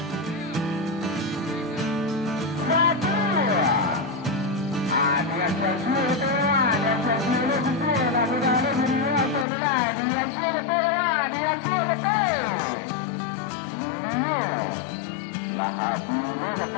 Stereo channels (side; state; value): right; drops out; at 9.5 s